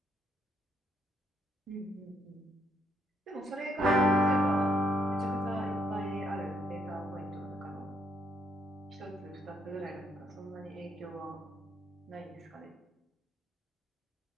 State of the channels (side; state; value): both; normal; correlation 0.72